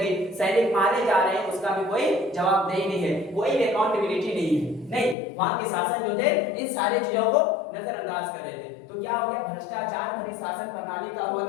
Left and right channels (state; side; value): drops out; right; at 5.2 s